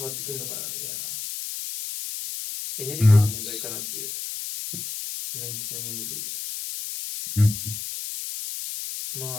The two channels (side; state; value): left; noise; hiss, 6 dB below the sound